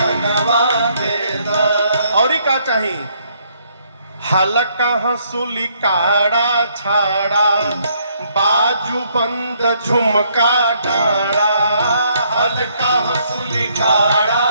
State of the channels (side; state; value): both; inverted; correlation -0.69